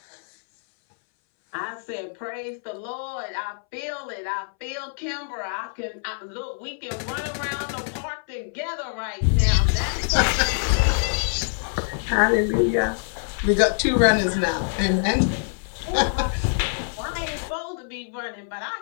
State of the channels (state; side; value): silent; right; 62 dB below the other